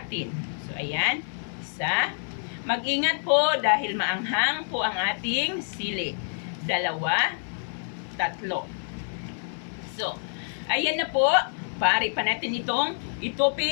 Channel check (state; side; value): silent; right; 57 dB below the other